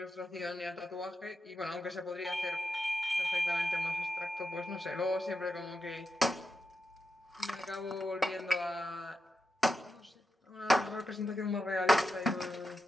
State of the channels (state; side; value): normal; both; correlation 0.88